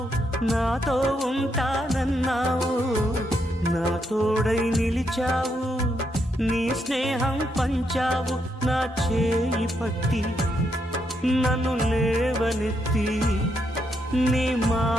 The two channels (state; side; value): normal; both; correlation 0.79